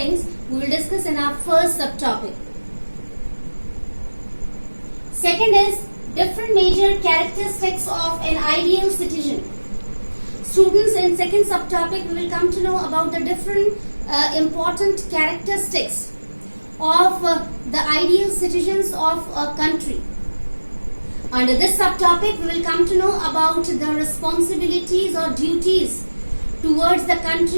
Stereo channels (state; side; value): inverted; both; correlation -1.00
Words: we will discuss in our first subtopic. Second is different major characteristics of an ideal citizen. Students, in second subtopic we will come to know about the different important characteristics of the ideal citizens of a country. Under this subtopic we will come to know about the responsibilities or duties towards the